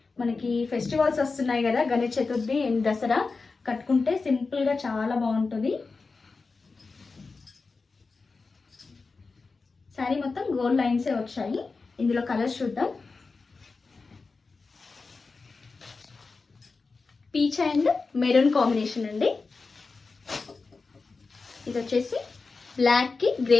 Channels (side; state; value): right; quieter; 4.2 dB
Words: మనకి ఫెస్టివల్స్ వస్తున్నాయి కదా, గణేష్ చతుర్థి అండ్ దసరా, కట్టుకుంటే సింపుల్గా చాలా బాగుంటుంది. శారీ మొత్తం గోల్డ్ లైన్సే వచ్చాయి. ఇందులో కలర్స్ చూద్దాం. పీచ్ అండ్ మెరూన్ కాంబినేషన్ అండి. ఇది వచ్చేసి బ్లాక్ కి